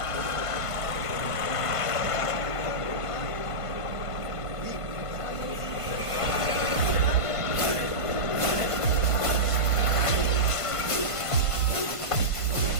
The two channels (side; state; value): right; late; 1.5 ms